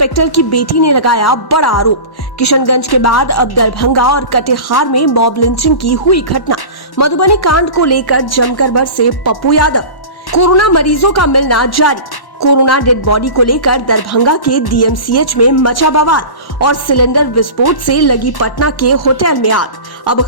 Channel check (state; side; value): late; right; 1.1 ms